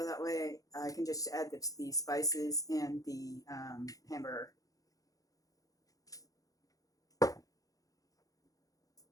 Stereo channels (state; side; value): late; right; 0.17 ms